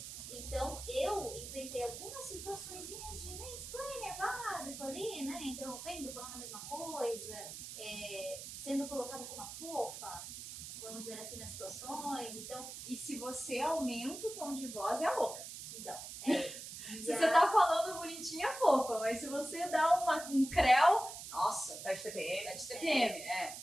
Então, eu enfrentei algumas situações de mansplaining básico ali, né? Interrompendo, falando a mesma coisa, sendo colocada como uma fofa, vamos dizer assim, nas situações. Então, E se você aumenta o tom de voz, é a louca. então Se você tá falando bonitinha, é fofa, mas se você dá um creu, nossa, Tá de TPM. é de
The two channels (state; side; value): noise; right; hiss, 10 dB below the sound